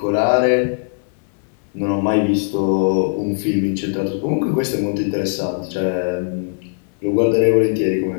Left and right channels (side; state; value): right; silent; 66 dB below the other